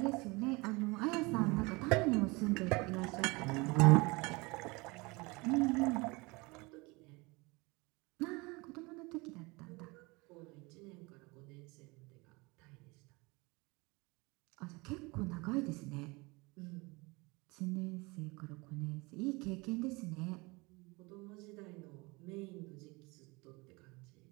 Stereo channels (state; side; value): quieter; left; 25.5 dB